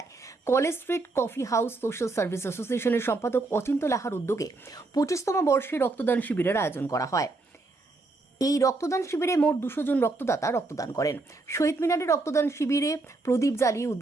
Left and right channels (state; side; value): quieter; left; 3.3 dB